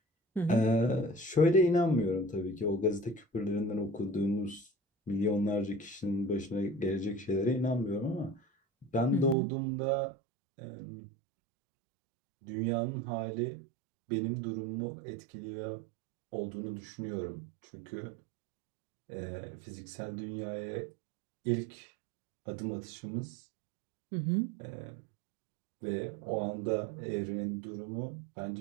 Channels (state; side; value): drops out; left; at 9.3 s